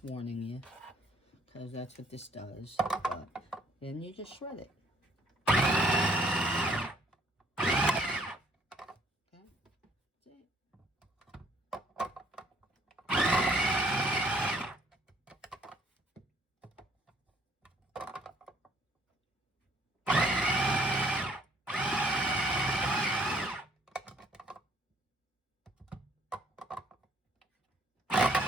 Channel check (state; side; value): normal; both; correlation 0.63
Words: warning you, because that's what this does, but then you just shred it. Okay, that's it.